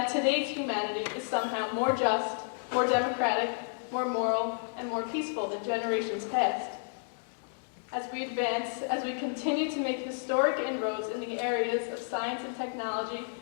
today's humanity is somehow more just, more democratic, more moral, and more peaceful than generations past. As we advance, as we continue to make historic inroads in the areas of science and technology,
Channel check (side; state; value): right; silent; digital silence